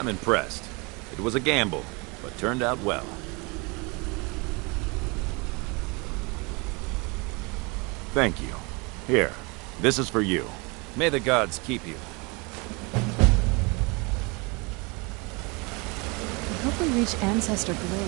impressed. It was a gamble, but turned out well. Thank you. Here, this is for you. May the gods keep you. I hope we reach Ancestor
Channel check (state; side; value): quieter; left; 28.9 dB